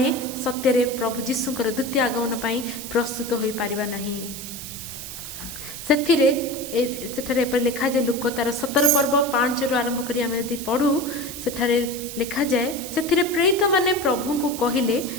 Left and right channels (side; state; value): right; noise; hiss, 10 dB below the sound